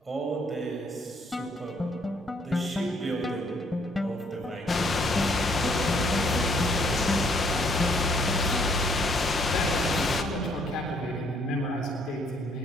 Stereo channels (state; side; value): normal; both; correlation 0.66